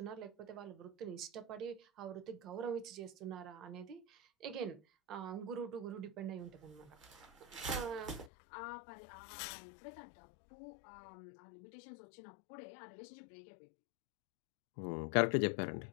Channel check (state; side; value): drops out; right; at 8.3 s